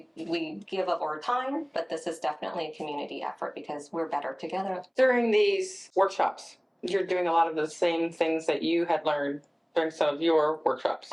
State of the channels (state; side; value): identical; both; correlation 1.00